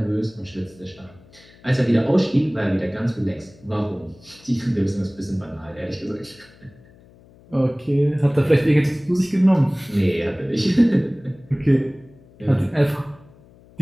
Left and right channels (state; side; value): noise; left; hum, 26 dB below the sound